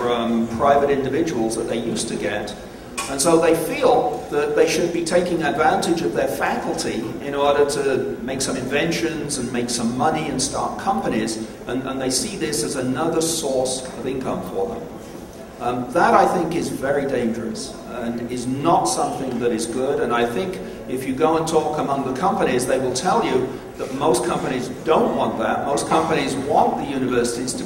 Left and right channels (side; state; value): both; identical; correlation 1.00